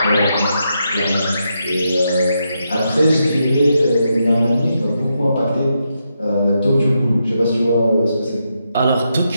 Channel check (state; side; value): inverted; both; correlation -0.83